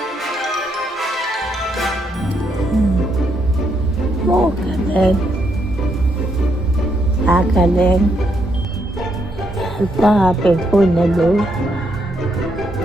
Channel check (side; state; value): both; normal; correlation 0.77